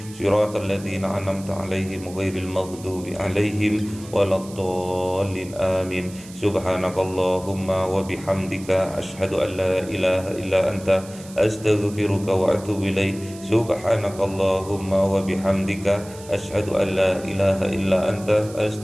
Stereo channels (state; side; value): noise; right; hiss, 19 dB below the sound